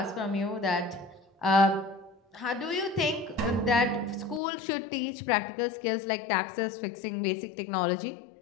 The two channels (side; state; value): right; drops out; at 4.4 s